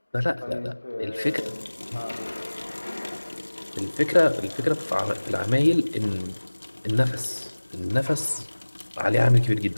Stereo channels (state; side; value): inverted; both; correlation -1.00